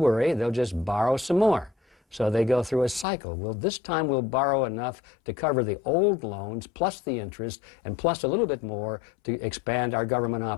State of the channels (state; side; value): drops out; right; at 3.1 s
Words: they'll just borrow some more. So they go through a cycle. Well, this time we'll borrow enough to cover the old loans, plus the interest, and plus a little bit more to expand our government